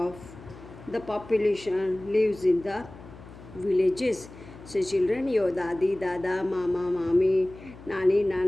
the population lives in the villages. So children, your dadi, dada, mama, mami, nani,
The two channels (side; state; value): left; noise; hum, 18 dB below the sound